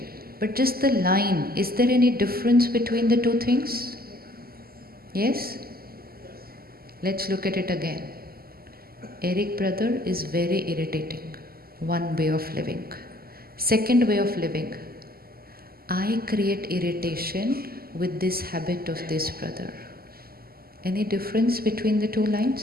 But just the line, is there any difference between the 2 things? Yes? Let's look at it again. Eric brother is very irritating. 1 way of living. Second way of living. I create irritation with this habit of this brother. Any difference between the 2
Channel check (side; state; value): left; late; 0.44 ms